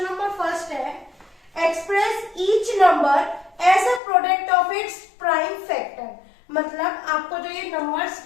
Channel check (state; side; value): drops out; right; at 4.0 s